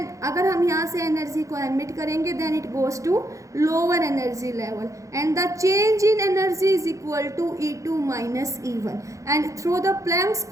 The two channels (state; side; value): late; left; 0.15 ms